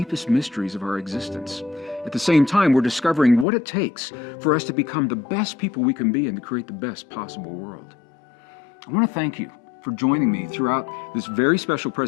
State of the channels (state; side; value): drops out; right; at 3.5 s